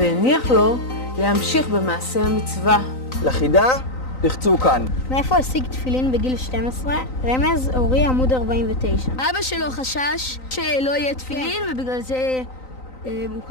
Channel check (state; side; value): late; right; 3.9 ms